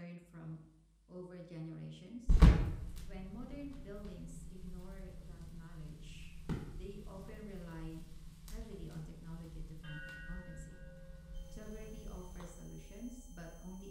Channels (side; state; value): both; identical; correlation 1.00